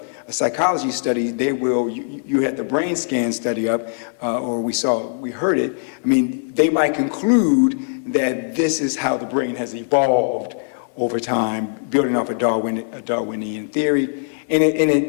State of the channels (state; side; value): silent; right; digital silence